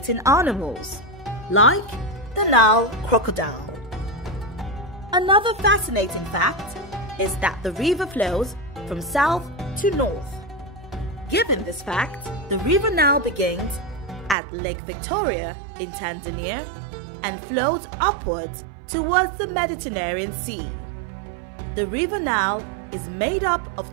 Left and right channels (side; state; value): left; drops out; at 14.4 s